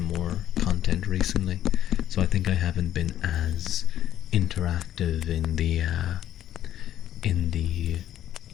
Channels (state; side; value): quieter; right; 11.7 dB